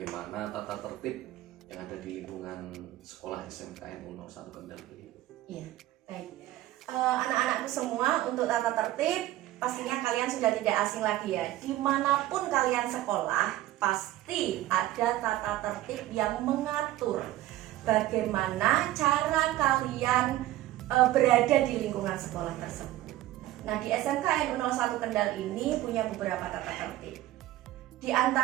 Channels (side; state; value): left; quieter; 15.2 dB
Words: tata tertib yang ada di lingkungan sekolah SMKN 01 Kendal begitu. Iya, baik. Anak-anakku semua, untuk tata tertib pastinya kalian sudah tidak asing lagi ya. Dimanapun kalian sekolah, pasti ada tata tertib yang mengatur bagaimana cara kalian berada di lingkungan sekolah tersebut. Nah, di SMKN 01 Kendal ini punya beberapa tata tertib. Di